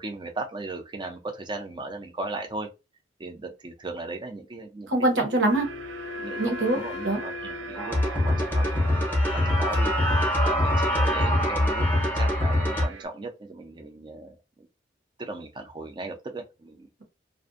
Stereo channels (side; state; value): both; normal; correlation 0.63